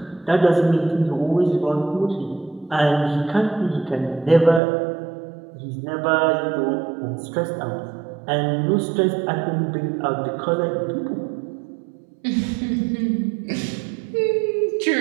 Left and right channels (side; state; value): left; drops out; at 4.6 s